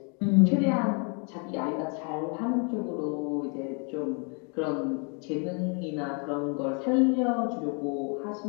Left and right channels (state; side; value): quieter; right; 37.3 dB